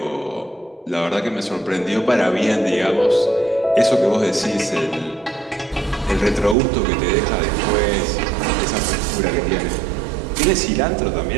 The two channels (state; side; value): drops out; left; at 6.6 s